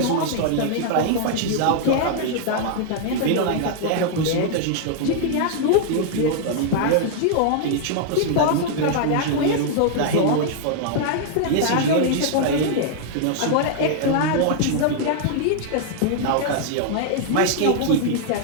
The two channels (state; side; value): different; both; correlation -0.01